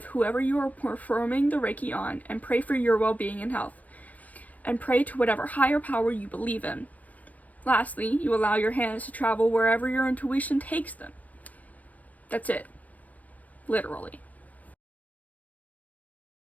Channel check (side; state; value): right; late; 0.076 ms